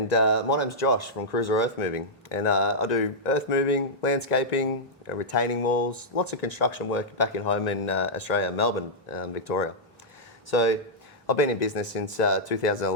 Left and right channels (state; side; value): normal; both; correlation -0.09